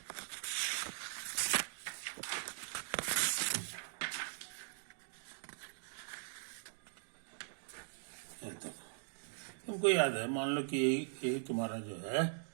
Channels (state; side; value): silent; left; digital silence